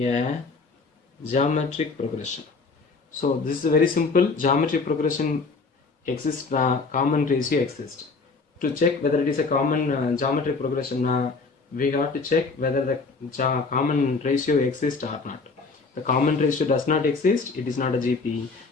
geometric progression. So this is very simple. Geometric progression exists, common ratio exists. To check whether it is a common geometric progression, we have to check whether the common ratio exists or not. The common ratio does not exist, it is not a GP.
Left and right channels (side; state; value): right; quieter; 4.2 dB